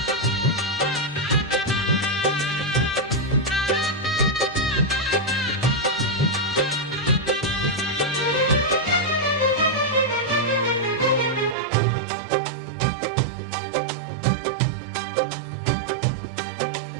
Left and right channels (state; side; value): drops out; left; at 11.6 s